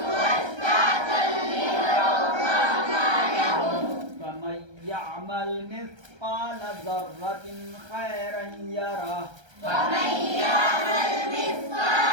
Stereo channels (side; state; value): left; late; 1.3 ms